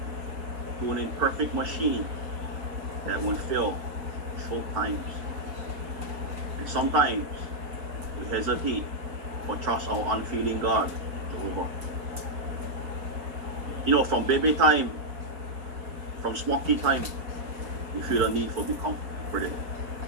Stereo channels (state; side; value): late; left; 4.2 ms